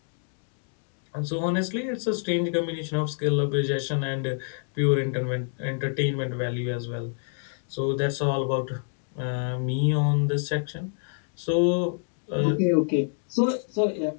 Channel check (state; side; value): silent; right; 60 dB below the other